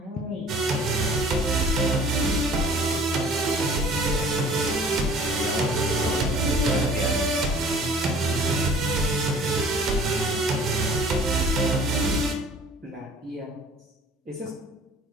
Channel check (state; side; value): normal; both; correlation 0.50